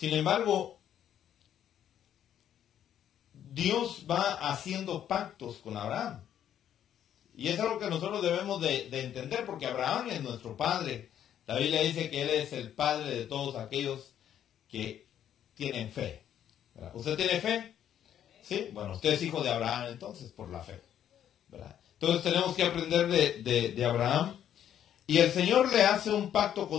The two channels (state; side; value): quieter; right; 10.2 dB